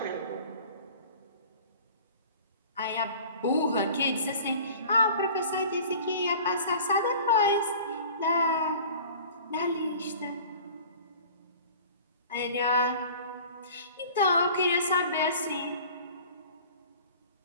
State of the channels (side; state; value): both; inverted; correlation -0.44